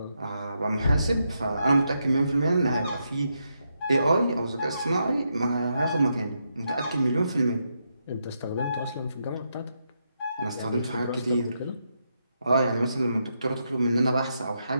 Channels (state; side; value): inverted; both; correlation -0.82